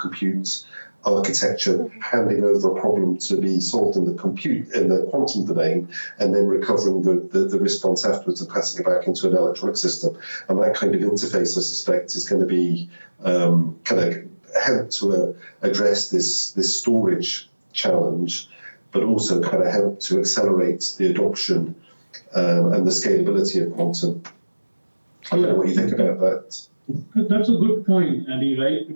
architecture handing over a problem to be solved in the quantum domain, and then recovering the response afterwards and passing it back into an electronic system. And that kind of interface, I suspect, is going to be kind of help to address this storage challenge, but also kind of help to accelerate the adoption and the scalability of quantum. I don't know what you think about that. That's a good point, Andy, right? I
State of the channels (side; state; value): both; inverted; correlation -1.00